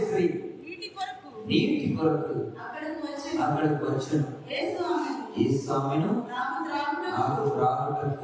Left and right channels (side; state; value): both; identical; correlation 1.00